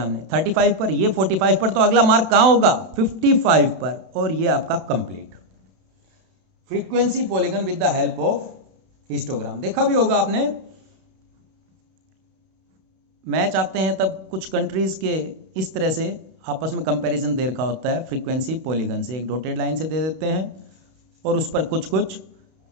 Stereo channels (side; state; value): left; late; 31 ms